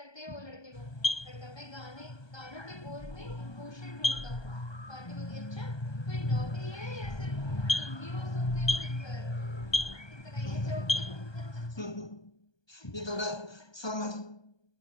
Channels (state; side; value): late; right; 1.2 ms